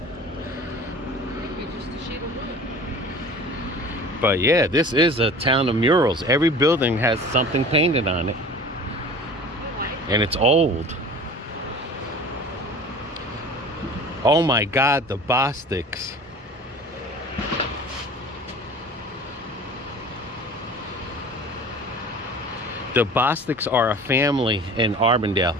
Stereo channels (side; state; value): both; normal; correlation 0.41